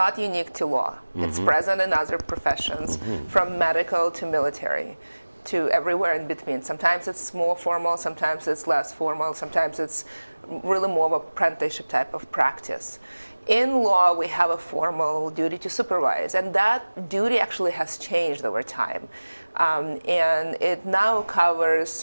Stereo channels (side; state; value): both; inverted; correlation -1.00